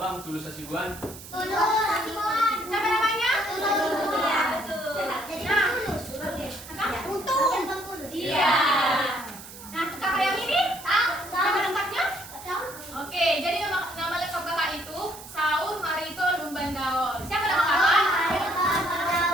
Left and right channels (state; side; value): noise; right; hiss, 15 dB below the sound